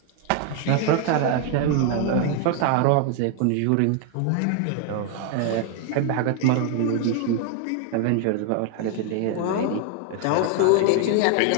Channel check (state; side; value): different; both; correlation 0.01